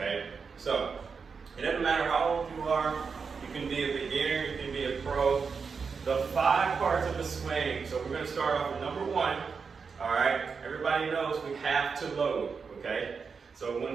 so it doesn't matter how old you are, you can be a beginner, you can be a pro. The 5 parts of a swing. So we're going to start off with number 1. All right, everybody knows we have to load. Okay, so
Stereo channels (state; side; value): quieter; left; 5.4 dB